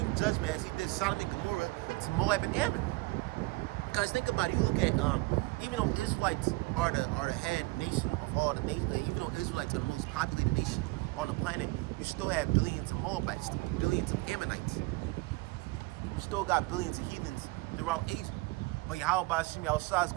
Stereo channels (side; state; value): left; quieter; 23.4 dB